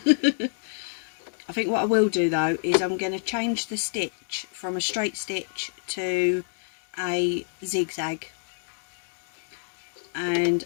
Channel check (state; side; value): silent; right; digital silence